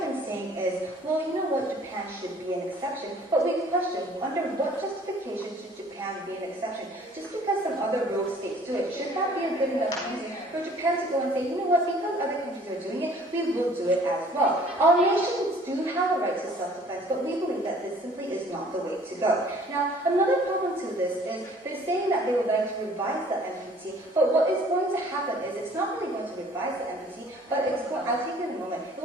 been saying is, well, you know what, Japan should be an exception. But we question, under what justification should Japan be an exception? Just because some other rogue states do it, should that be a good enough reason for Japan to go and say, you know what, because other countries are doing it, we will do it as well. All nations do have a right to self-defense, but we believe that this simply is not the way to go. Now, another problem to this is they're saying that they would like to revise the NPT, but what is going to happen is it's not really going to revise the NPT, but it's going, I'll take it in a moment, it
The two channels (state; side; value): normal; both; correlation 0.54